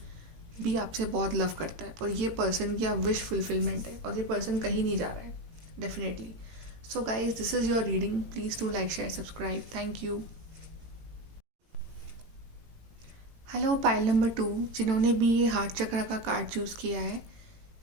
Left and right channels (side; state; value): left; late; 18 ms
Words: भी आपसे बहुत लव करता है और ये पर्सन की आप विश फुलफिलमेंट है और ये पर्सन कहीं नहीं जा रहा है definitely. So guys, this is your reading. Please do like, share, subscribe. Thank you. Hello pile number 2, जिन्होंने भी ये हार्ट चक्र का कार्ड चूज़ किया है,